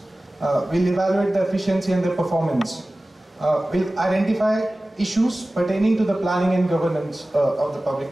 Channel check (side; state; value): both; normal; correlation 0.97